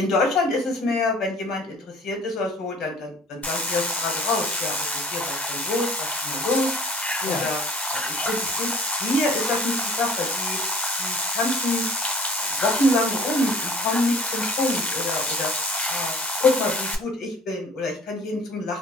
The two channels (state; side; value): normal; both; correlation 0.49